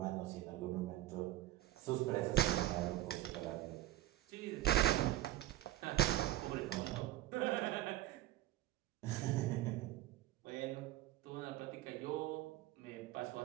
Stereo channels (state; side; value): quieter; left; 14.6 dB